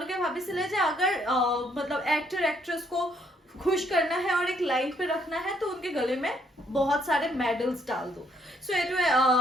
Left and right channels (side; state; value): both; normal; correlation 0.69